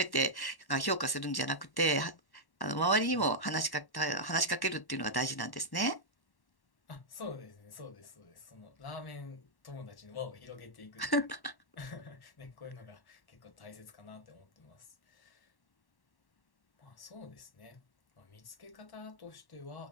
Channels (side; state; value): right; late; 1.1 ms